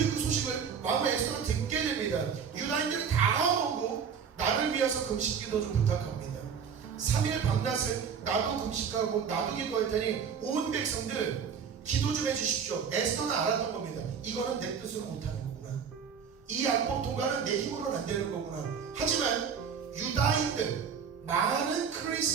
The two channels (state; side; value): quieter; left; 6.8 dB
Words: 그 소식을 왕후 에스더가 듣게 됩니다. 유다인들이 다 오고 나를 위해서 금식기도 좀 부탁합니다. 3일 밤낮을 나도 금식하고 나도 기도할 테니 온 백성들 기도 좀 해주십시오. 에스더는 알았던 겁니다. 이거는 내 뜻으로 못하는 거구나. 이 율법 통과는 내 힘으로는 안 되는 거구나. 하지만 유다인들 많은